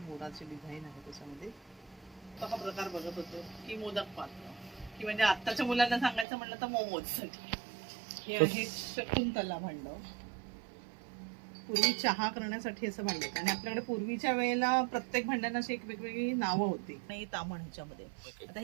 डिझाईन आहे. त्याच्यामध्ये हा प्रकार बघत होतो की मोदक पात्र, की म्हणजे आत्ताच्या मुलांना सांगायचं म्हणलं तर मोमोज साठी. हे आहे शकुंतला भांड, पूर्वी चहा करण्यासाठी असं भांड. आणि आपल्याकडे पूर्वीच्या वेळेला प्रत्येक भांड्यांना अशी एक वेगवेगळी नावं होती. नाही तामण ह्याच्यामध्ये. आता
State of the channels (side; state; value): left; drops out; at 6.2 s